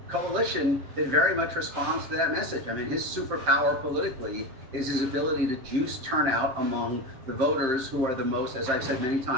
coalition that very much responds to that message. I mean, his superpower politically is his ability to juice turnout among the voters who are the most, as I've said many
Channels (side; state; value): left; late; 7.6 ms